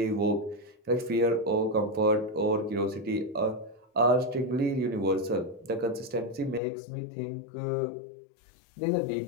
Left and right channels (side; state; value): right; drops out; at 6.6 s